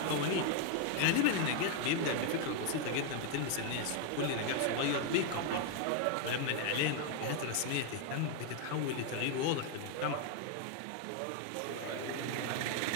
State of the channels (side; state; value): both; different; correlation 0.01